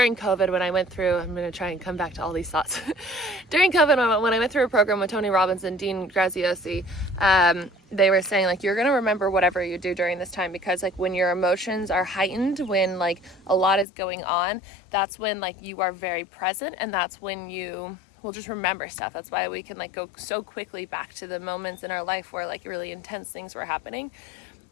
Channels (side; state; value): right; drops out; at 13.9 s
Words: COVID, when I went through, I'm going to try and come back to all these thoughts. During COVID, when I went through a program with Tony Robbins and Dean Graziosi, they were saying like, you're going to remember whatever you do during this time, because like when your emotions are heightened, when like a lot is going on, that's when like you are very present, and that's when you will just remember stuff. That's why we can like go so quickly back to the moments in our life where like really intense things were happening.